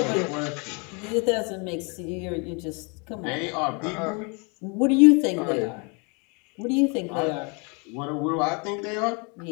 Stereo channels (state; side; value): quieter; right; 32.9 dB